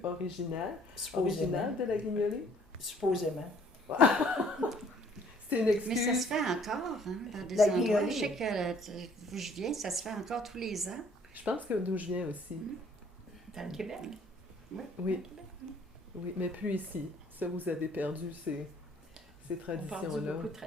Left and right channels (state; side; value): normal; both; correlation 0.59